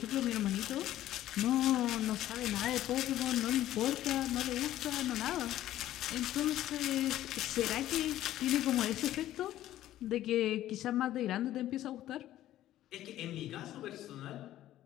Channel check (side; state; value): right; quieter; 13.5 dB